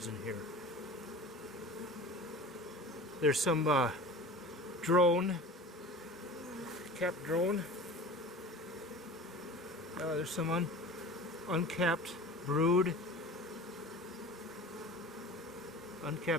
in here. There's some drone, capped drone. There's some uncapped brood.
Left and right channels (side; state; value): both; normal; correlation 0.38